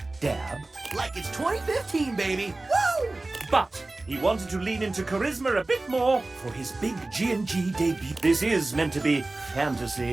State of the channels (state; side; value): quieter; left; 3.0 dB